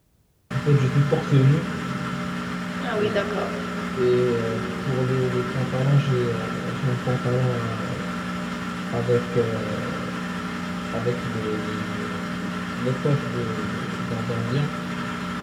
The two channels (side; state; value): both; identical; correlation 1.00